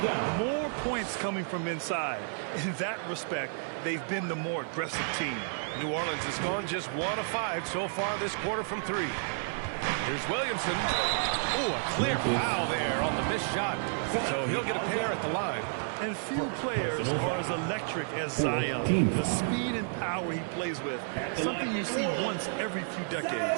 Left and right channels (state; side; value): silent; left; 57 dB below the other